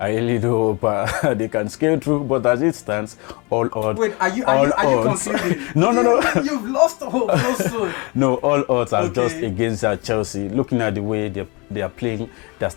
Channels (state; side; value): quieter; right; 28.7 dB